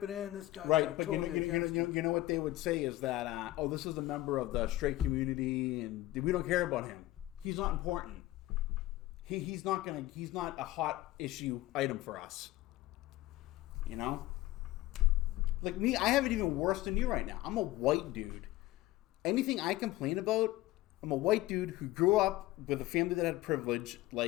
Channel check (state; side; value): quieter; right; 17.1 dB